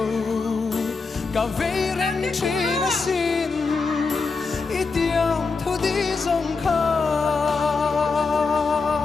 Cả vây rèn chi na xin Ý tiang thu đi dòng khá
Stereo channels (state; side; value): quieter; right; 4.4 dB